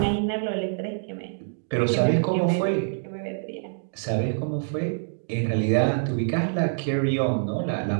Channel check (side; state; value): left; silent; digital silence